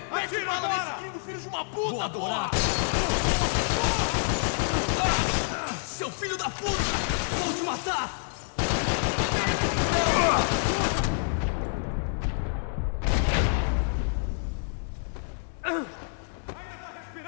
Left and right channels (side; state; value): right; silent; digital silence